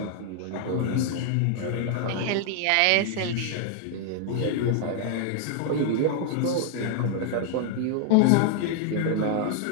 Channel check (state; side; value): different; both; correlation 0.00